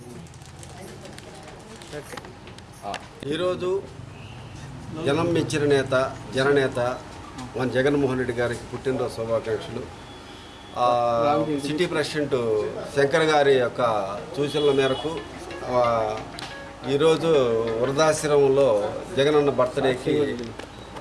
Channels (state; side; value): identical; both; correlation 1.00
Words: ఈరోజు జనం మెచ్చిన నేత జననేత మన జగన్మోహన్ రెడ్డి గారికి పుట్టినరోజు శుభాకాంక్షలు. సిటీ ప్రెసిడెంట్ శంకర్ గారి యొక్క సూచనల మేరకు ఈరోజు వృద్ధాశ్రమంలో జగనన్న బర్త్డేకి